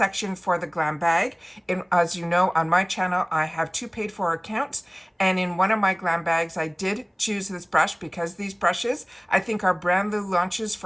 for the Glam Bag. As you know, on my channel, I have 2 paid for accounts. And in one of my Glam Bags, I did choose this brush because these brushes, I think, are brand new launches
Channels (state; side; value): identical; both; correlation 1.00